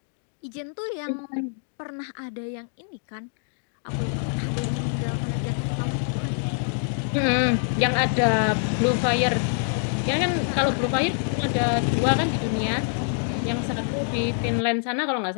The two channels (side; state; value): right; silent; 61 dB below the other